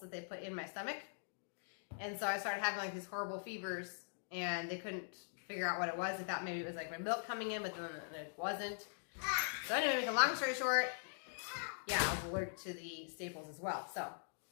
that they put in my stomach. And so I started having like these horrible fevers, and they couldn't figure out what it was. They thought maybe it was like my milk coming in, but then it wasn't. So anyway, make a long story short, yeah, I was allergic to the staples as well. So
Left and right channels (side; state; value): right; silent; digital silence